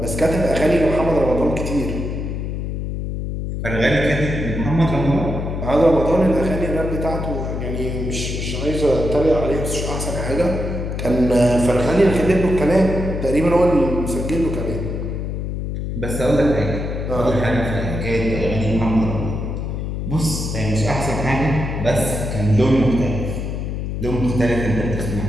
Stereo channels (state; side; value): noise; left; hum, 4 dB below the sound